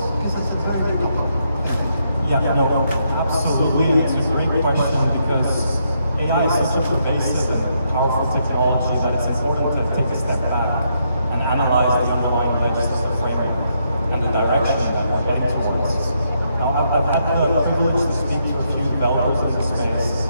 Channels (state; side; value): inverted; both; correlation -0.77